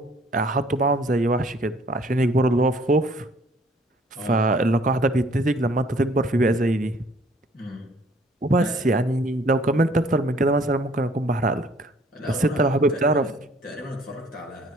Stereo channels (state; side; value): normal; both; correlation 0.58